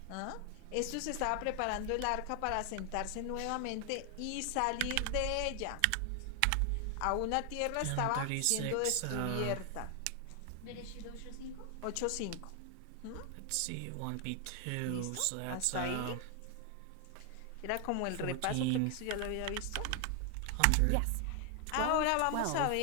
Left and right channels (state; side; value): different; both; correlation 0.00